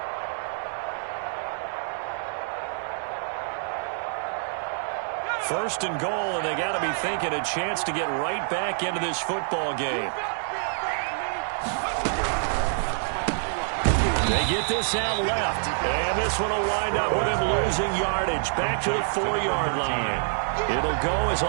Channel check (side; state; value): left; silent; digital silence